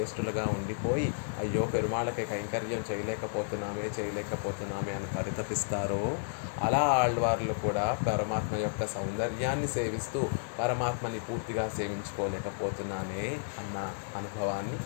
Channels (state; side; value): silent; right; digital silence